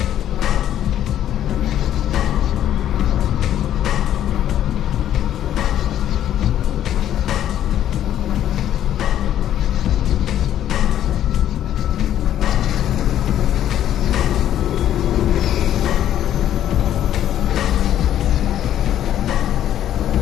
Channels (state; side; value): quieter; right; 11.2 dB